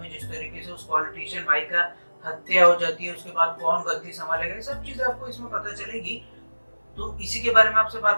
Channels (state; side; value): inverted; both; correlation -1.00